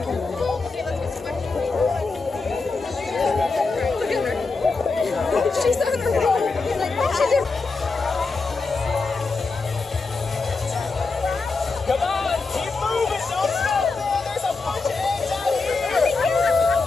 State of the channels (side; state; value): right; quieter; 4.1 dB